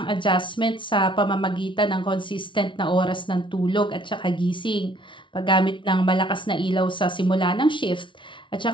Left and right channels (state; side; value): late; right; 0.24 ms